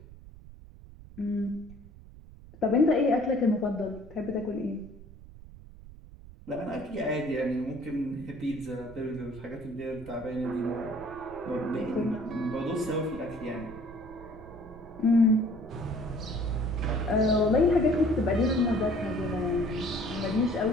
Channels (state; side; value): noise; right; rumble, 18 dB below the sound